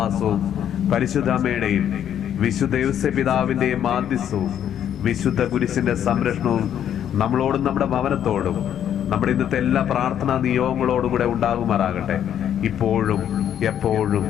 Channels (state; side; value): quieter; right; 9.9 dB